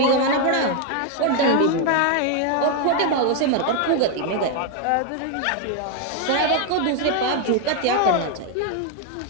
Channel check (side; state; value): both; different; correlation 0.00